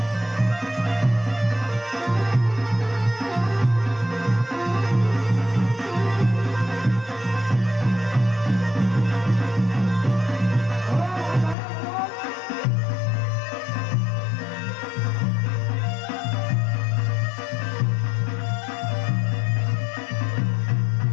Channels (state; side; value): drops out; right; at 11.6 s